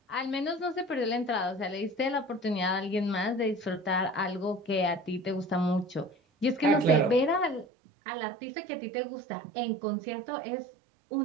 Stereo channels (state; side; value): drops out; left; at 7.7 s